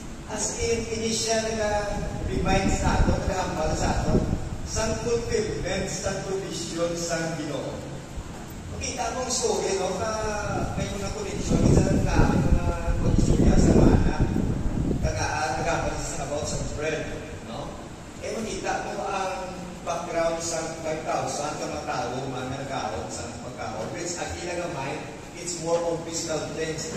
As in, initial nag-remind sa ato, nag-aambal sa ato, sa fulfillment, sa provision sa Ginoo. Makita mong story, no? May mga connection, isa lang na mga pag-istorya sa mana, nag-aambal sa about sa bread, no? Makita mo ang background sa 5,000 ka matao, mga nagkaon sa pagkaon, which ang ilang mind, it's more on physical things.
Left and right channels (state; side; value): identical; both; correlation 1.00